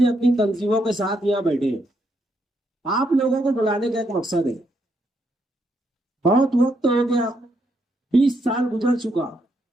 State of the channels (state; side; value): normal; both; correlation 0.77